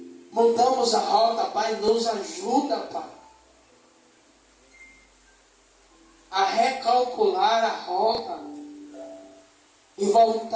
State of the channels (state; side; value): identical; both; correlation 1.00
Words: mudamos a rota, Pai, nos ajuda, Pai, a recalcular a rota e